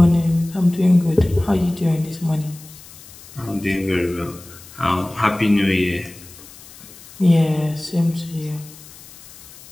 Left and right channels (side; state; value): left; noise; hiss, 20 dB below the sound